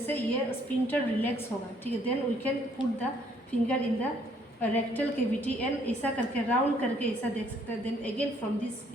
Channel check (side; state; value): both; normal; correlation 0.65